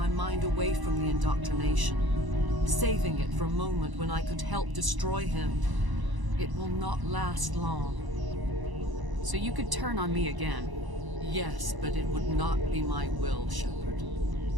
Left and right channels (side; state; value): left; late; 1.0 ms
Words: mind away from the indoctrination, saving it for a moment when I could help destroy him. It will not last long. So you could turn on me again? Yes, but it would not be my will, Shepard.